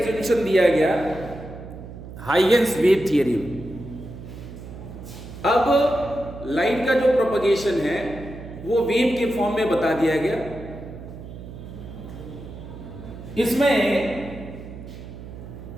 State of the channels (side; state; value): right; noise; hum, 13 dB below the sound